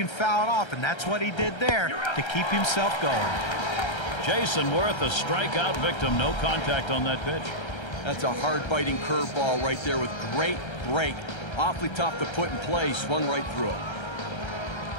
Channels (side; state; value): right; late; 1.3 ms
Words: foul it off, and that's what he did there to keep himself going. Jason Worth, a strikeout victim. No contact on that pitch. That's a hard-biting curveball right there with great break. Awfully tough to put in play. Swung right through it.